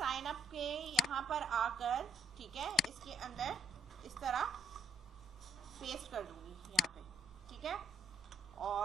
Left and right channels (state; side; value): normal; both; correlation 0.67